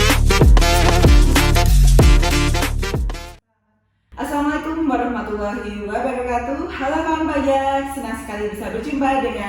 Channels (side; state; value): both; identical; correlation 1.00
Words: Assalamualaikum warahmatullahi wabarakatuh. Halo kawan pajak, senang sekali bisa berjumpa